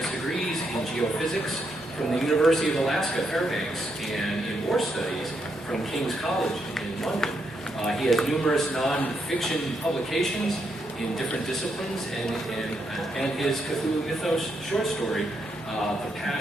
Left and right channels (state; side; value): normal; both; correlation 0.79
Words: degrees in geophysics from the University of Alaska, Fairbanks, and in war studies from King's College in London. He has numerous non-fiction publications in different disciplines, and his Cthulhu Mythos short story, The